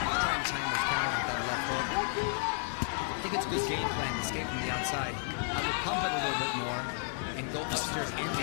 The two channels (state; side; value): silent; right; 56 dB below the other